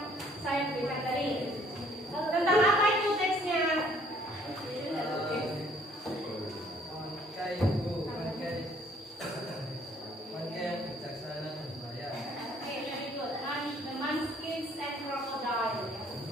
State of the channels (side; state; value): both; normal; correlation 0.61